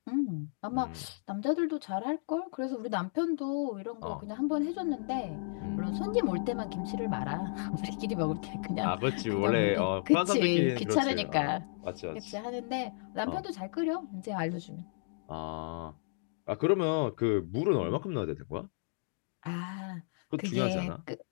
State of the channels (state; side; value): silent; right; digital silence